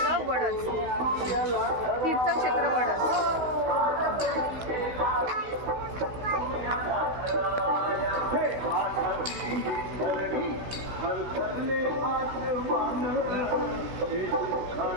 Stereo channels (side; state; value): left; late; 16 ms